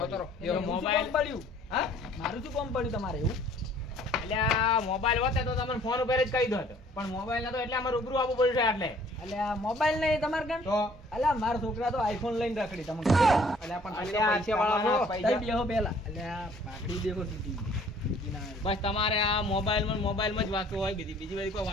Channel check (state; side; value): normal; both; correlation 0.56